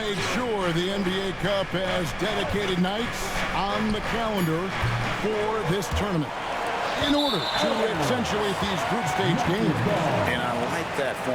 sure the NBA Cup has dedicated nights on the calendar for this tournament in order to accentuate these group stage games. And I like that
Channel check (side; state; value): both; identical; correlation 1.00